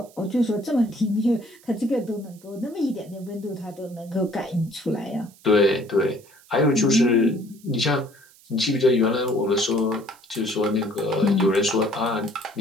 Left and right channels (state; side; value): noise; right; hiss, 26 dB below the sound